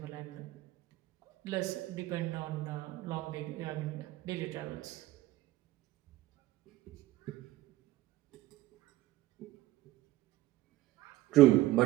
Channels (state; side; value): quieter; left; 16.6 dB